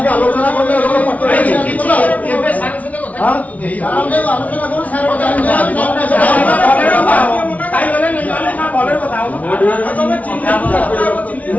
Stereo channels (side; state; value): right; late; 0.070 ms